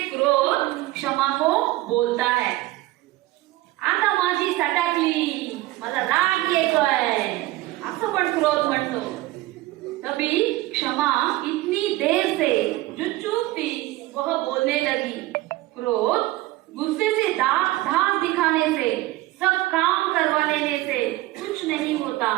क्रोध क्षमा को बोलता है। आता माझी सटाकली, मला राग येतोय, असं पण क्रोध म्हणतो। तभी क्षमा इतनी देर से जो चुप थी वह बोलने लगी। क्रोध गुस्से से धाक दिखाने से, सब काम करवा लेने से कुछ नहीं होता,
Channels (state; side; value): quieter; left; 18.0 dB